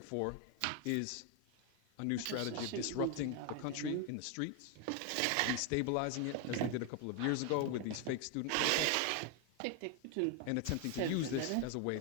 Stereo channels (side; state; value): both; different; correlation 0.01